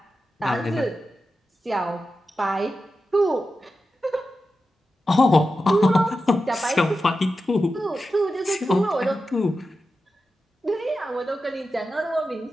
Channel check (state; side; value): normal; both; correlation 0.91